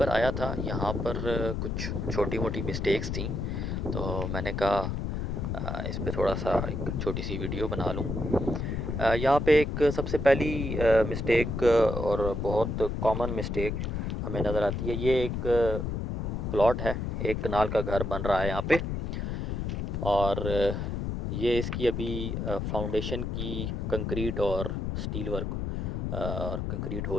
आया था, यहाँ पर कुछ छोटी मोटी मिस्टेक्स थी, तो मैंने कहा इस पे थोड़ा सा एक छोटी सी वीडियो बना लूँ। यहाँ पे एक सबसे पहली मिस्टेक और बहुत कॉमन मिस्टेक हमें नज़र आती है। ये एक प्लॉट है, एक कनाल का घर बन रहा है यहाँ पे, और ये इसकी अभी फाउंडेशन की कंक्रीट और स्टील वर्क और कंक्रीट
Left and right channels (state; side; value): noise; left; rumble, 2 dB below the sound